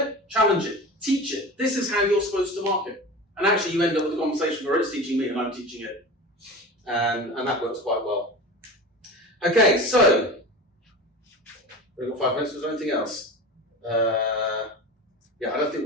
challenge it. Teach it. This is how you're supposed to mark it. And actually, you end up with a conversation where it's teaching me and I'm teaching it. And that works quite well. Okay, so we've got 5 minutes. Was there anything else? I don't think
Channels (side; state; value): both; normal; correlation 0.32